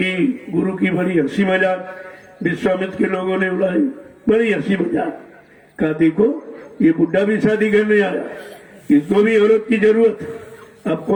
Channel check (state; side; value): identical; both; correlation 1.00